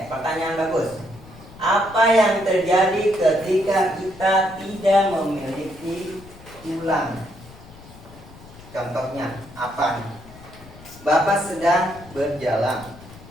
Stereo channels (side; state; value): left; noise; rumble, 20 dB below the sound